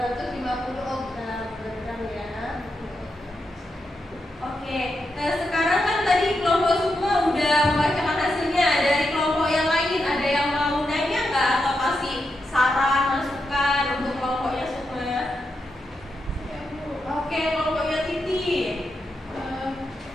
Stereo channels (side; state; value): both; normal; correlation 0.85